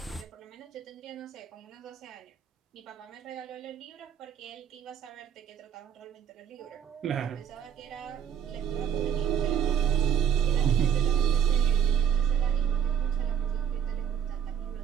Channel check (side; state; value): left; quieter; 8.5 dB